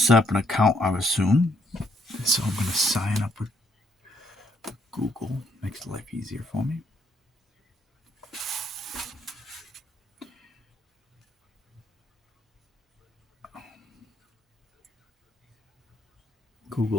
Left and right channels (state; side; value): normal; both; correlation 0.70